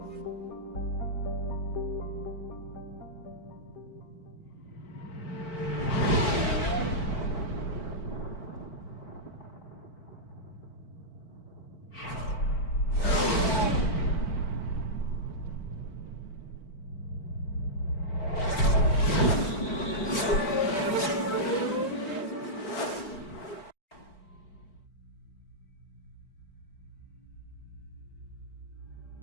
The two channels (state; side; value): late; right; 4.3 ms